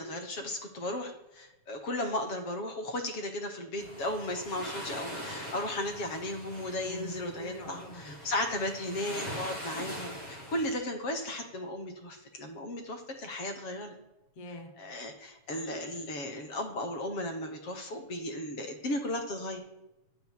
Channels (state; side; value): late; right; 7.2 ms